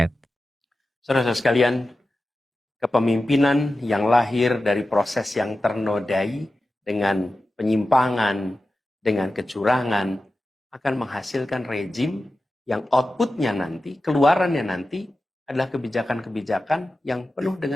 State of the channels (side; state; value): both; normal; correlation 0.93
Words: Saudara-saudara sekalian, kepemimpinan yang lahir dari proses yang ternodai dengan penyimpangan, dengan kecurangan, akan menghasilkan rejim yang outputnya nanti, keluarannya nanti, adalah kebijakan-kebijakan yang penuh